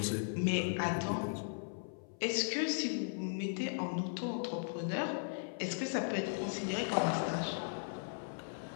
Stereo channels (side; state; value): right; silent; 53 dB below the other